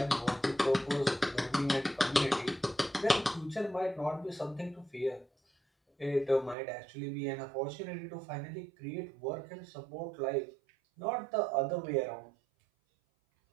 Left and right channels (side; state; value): left; drops out; at 6.6 s